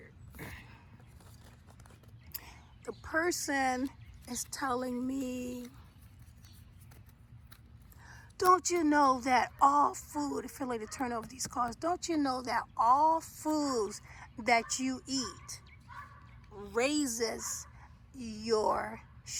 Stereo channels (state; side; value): identical; both; correlation 1.00